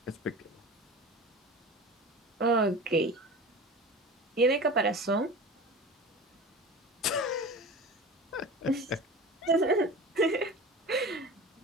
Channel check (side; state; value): both; normal; correlation 0.35